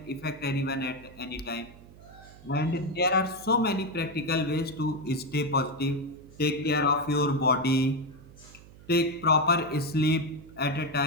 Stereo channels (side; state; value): right; noise; hum, 21 dB below the sound